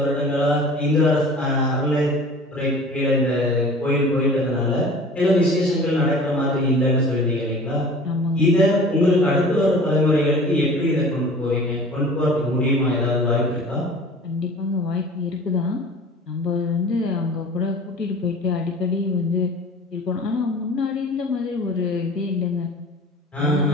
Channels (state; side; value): normal; both; correlation 0.43